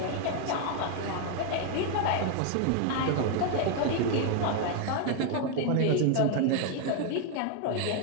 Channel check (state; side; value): different; both; correlation 0.00